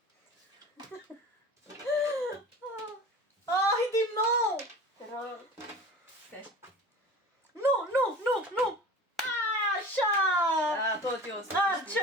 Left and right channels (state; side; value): normal; both; correlation 0.38